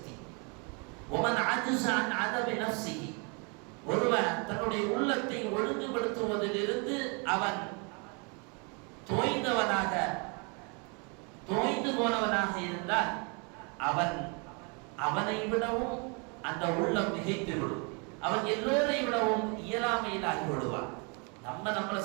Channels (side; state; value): left; quieter; 34.1 dB